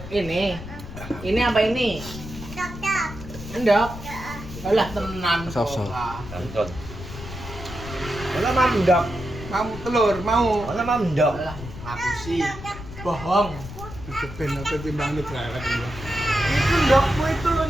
Ini apa ini? Endok. Alah tenan kok. Sop. Tonton. Mana mandok? Mau telur, mau. Mana mandok? Alah, aku sih bohong. Ben apa timbang ini berangkat ini. Itu endokmu.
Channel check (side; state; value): left; noise; rumble, 12 dB below the sound